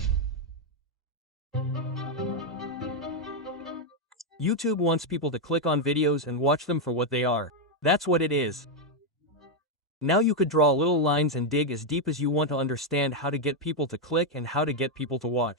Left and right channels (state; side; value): normal; both; correlation 0.02